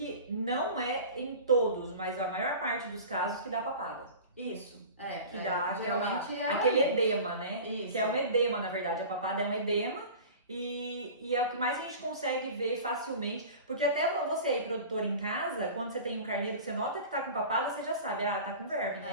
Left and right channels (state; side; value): inverted; both; correlation -0.37